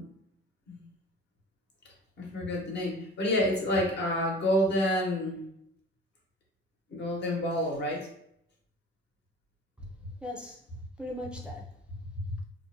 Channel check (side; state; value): both; normal; correlation 0.41